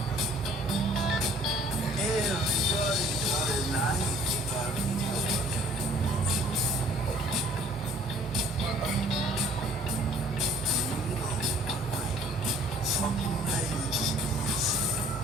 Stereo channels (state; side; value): normal; both; correlation 0.56